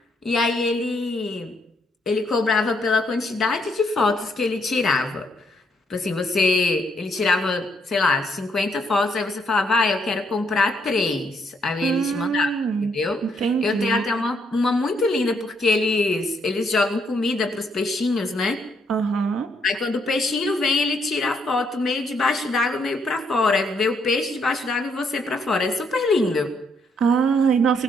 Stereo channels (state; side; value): normal; both; correlation 0.73